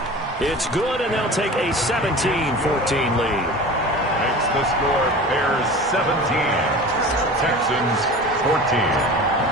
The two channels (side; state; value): both; normal; correlation 0.36